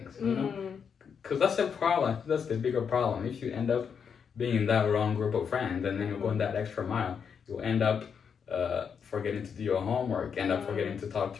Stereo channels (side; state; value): right; quieter; 6.8 dB